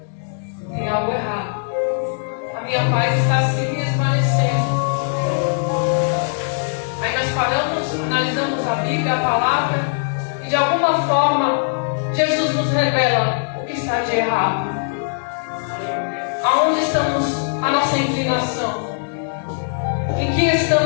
Tem algo errado. A minha paz está se desvanecendo. Aí nós paramos, nós damos a Bíblia, a palavra, e de alguma forma Jesus nos revela o que está de errado. Aonde estamos a nossa inclinação? Em que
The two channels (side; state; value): right; silent; digital silence